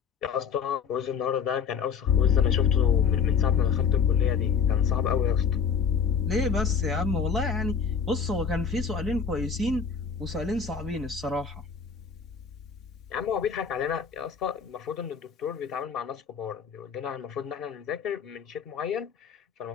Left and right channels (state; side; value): quieter; right; 6.3 dB